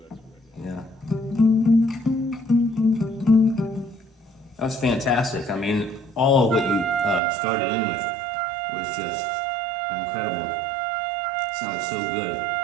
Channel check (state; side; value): drops out; left; at 7.2 s